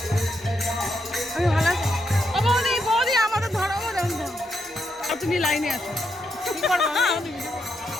আমি ভালো আছি। ও বৌদি বৌদি আমাদের ধরো তুমি লাইনে আসো, কি করবো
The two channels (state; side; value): normal; both; correlation 0.81